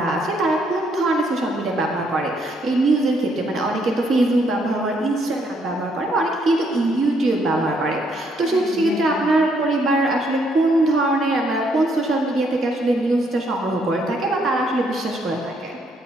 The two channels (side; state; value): both; normal; correlation 0.71